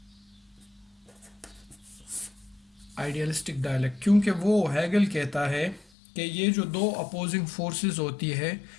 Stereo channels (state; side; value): drops out; right; at 5.9 s